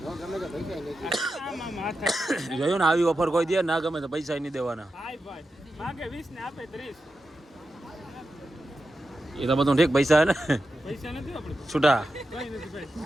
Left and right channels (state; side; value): normal; both; correlation 0.90